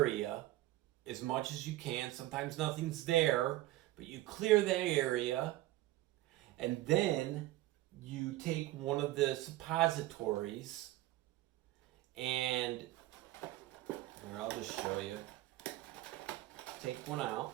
as much as you can. Sometimes nothing's there, but you clear that area. And then you take one of the suppositories and here, I'll just show you. Take one out.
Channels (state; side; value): quieter; left; 16.7 dB